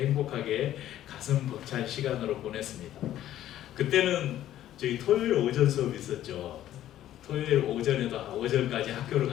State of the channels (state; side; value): quieter; right; 12.6 dB